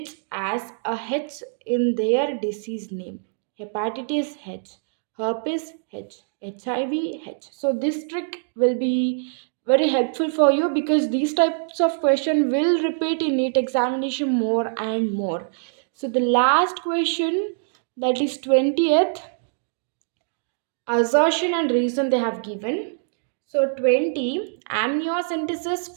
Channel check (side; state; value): left; silent; digital silence